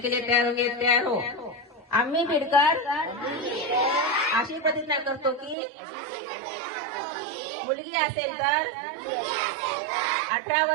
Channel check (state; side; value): drops out; left; at 5.6 s